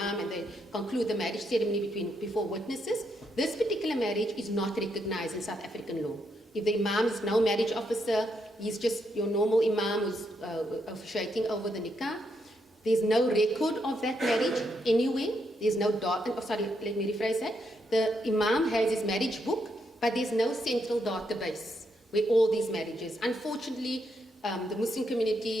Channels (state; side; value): normal; both; correlation 0.79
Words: and they conclude the marriage ceremony before witnesses. This particular marriage is not recognized in South African law. If the imam is no marriage officer, he's just your normal imam who's officiating over the nikah. There's no record of that marriage anywhere. There's no let me rephrase that. The imam has his marriage book, but there's no central database where all these marriages. Unfortunately, the Muslim